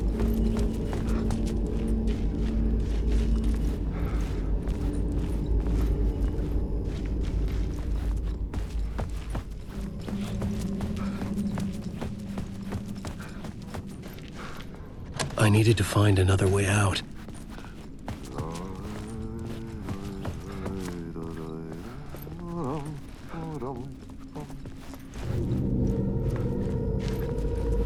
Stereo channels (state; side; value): identical; both; correlation 1.00